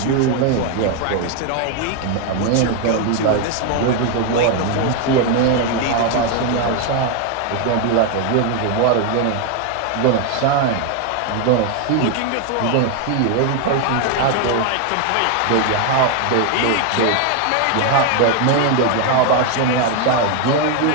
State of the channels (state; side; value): different; both; correlation 0.01